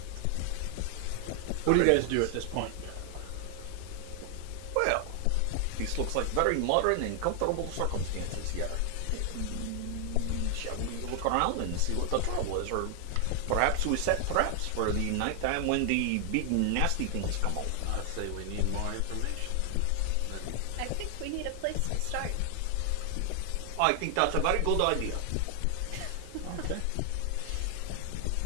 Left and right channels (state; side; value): different; both; correlation 0.00